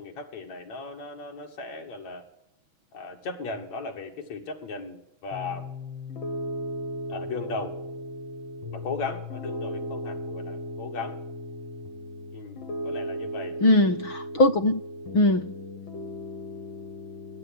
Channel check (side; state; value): right; late; 6.2 ms